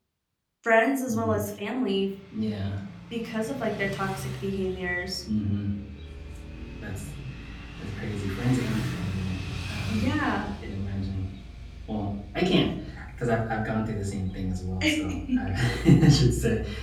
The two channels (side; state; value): both; identical; correlation 1.00